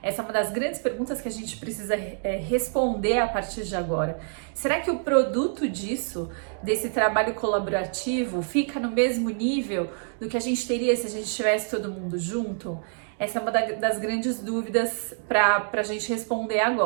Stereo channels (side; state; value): left; silent; 61 dB below the other